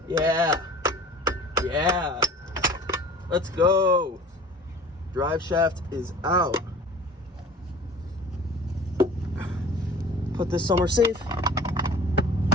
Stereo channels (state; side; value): normal; both; correlation 0.44